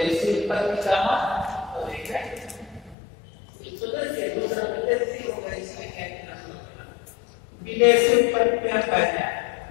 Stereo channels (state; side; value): drops out; right; at 3.0 s